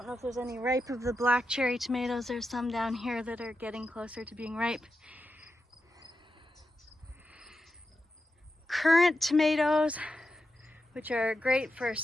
know if there's any ripe of the black cherry tomatoes. There's some down here that are getting closer to being ripe. Currant tomatoes, which are great for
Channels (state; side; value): normal; both; correlation 0.88